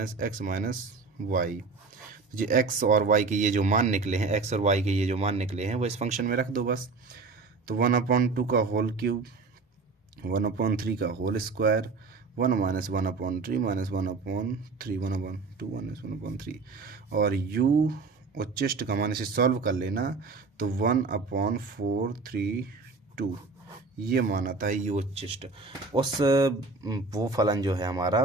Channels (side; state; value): left; quieter; 4.1 dB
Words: - x - y। जो x और y के ये जो मान निकले हैं, x और y के ये जो मान निकले हैं, वो इस फंक्शन में रख दो बस। तो 1/2 का होल क्यूब, 1/3 का होल स्क्वायर, 1 - 1/3 -1/3 1/2 -1/3, और u उच्चिष्ट का मान इसे सॉल्व कर लेना, तो 1/432 ये मान आता है यू उच्चिष्ट। वो फलन जो है